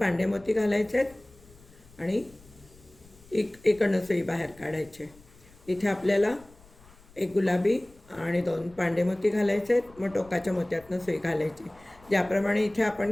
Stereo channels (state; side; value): noise; left; rumble, 25 dB below the sound